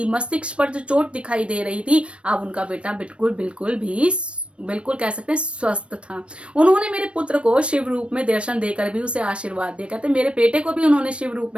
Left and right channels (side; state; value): left; late; 0.060 ms